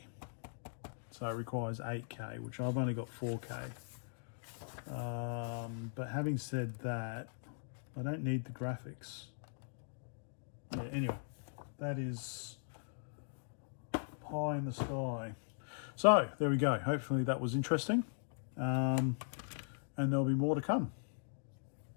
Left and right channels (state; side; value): silent; right; digital silence